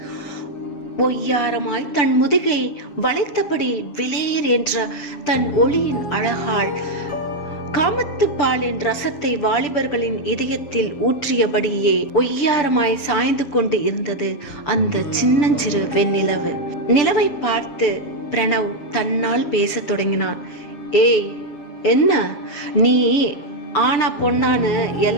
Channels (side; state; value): right; late; 7.2 ms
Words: ஒய்யாரமாய் தன் முதுகை வளைத்தபடி விலேர் என்ற தன் ஒளியின் அழகால் காமத்து பாலின் ரசத்தை வாலிபர்களின் இதயத்தில் ஊற்றியபடியே ஒய்யாரமாய் சாய்ந்து கொண்டு இருந்தது அந்த சின்னஞ்சிறு வெண்ணிலவு. நிலவை பார்த்து பிரணவ் தன்னால் பேசத் தொடங்கினான். ஏய், என்ன நீ ஆனா பொண்ணான்னு